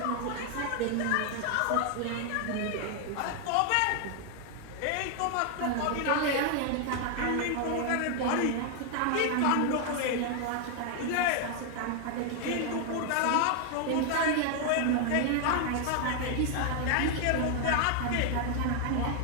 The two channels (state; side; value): different; both; correlation 0.00